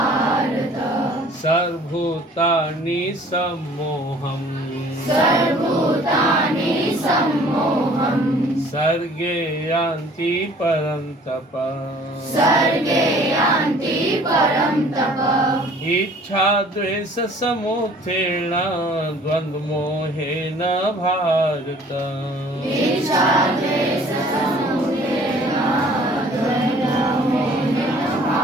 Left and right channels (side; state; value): both; normal; correlation 0.53